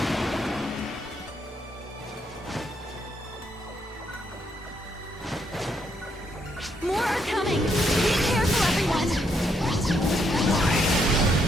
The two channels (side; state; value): both; normal; correlation 0.75